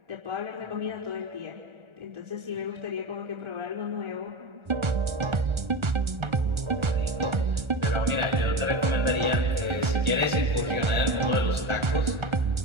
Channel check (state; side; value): late; left; 1.4 ms